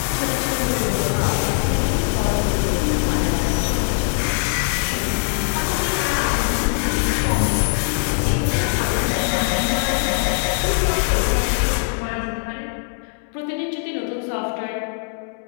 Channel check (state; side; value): silent; right; 65 dB below the other